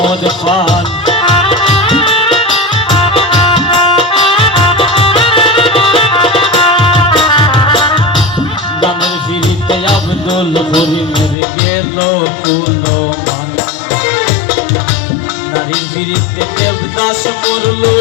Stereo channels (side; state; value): right; drops out; at 11.4 s